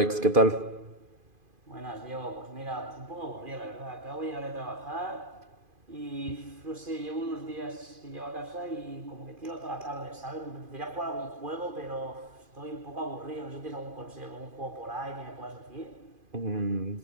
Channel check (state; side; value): late; left; 2.5 ms